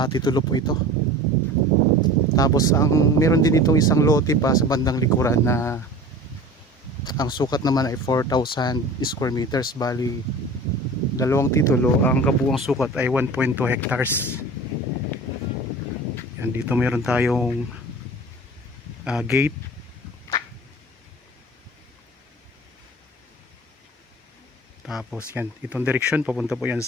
titulo po ito. Tapos meron din itong isang lote pa sa bandang likuran na ang sukat naman ay 4,000 square meters. Bali dalawang titulo, ang kabuuang sukat ay 1.2 hectares. Yan, dito meron tayong gate. Tapos yan, itong direksyon papunta po yan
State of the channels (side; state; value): both; normal; correlation 0.38